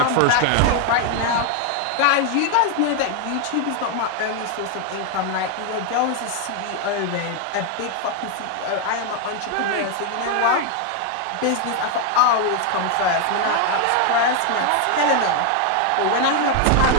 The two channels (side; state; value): both; different; correlation 0.01